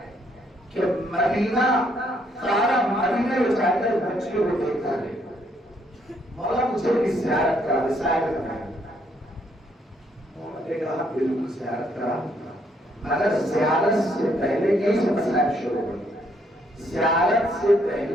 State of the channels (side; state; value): both; normal; correlation 0.71